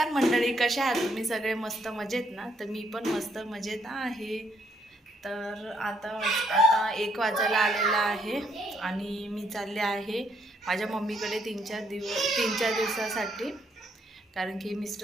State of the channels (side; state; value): both; normal; correlation 0.72